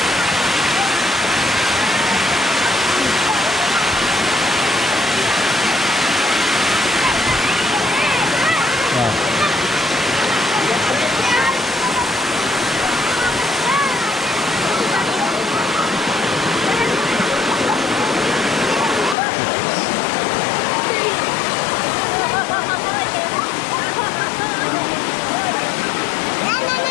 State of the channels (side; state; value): right; drops out; at 19.2 s